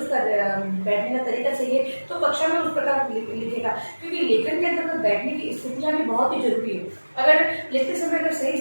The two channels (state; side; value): inverted; both; correlation -1.00